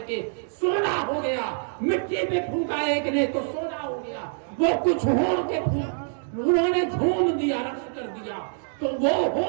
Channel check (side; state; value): left; silent; digital silence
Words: کے سونا ہو گیا، مٹی پہ پھونکا ایک نے تو سونا ہو گیا، وہ کچھ ہو کے انہوں نے جھوم دیا، رقص کر دیا، تو وہ